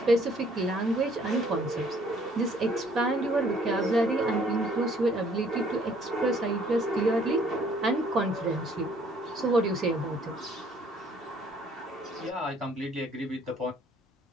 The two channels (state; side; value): normal; both; correlation 0.61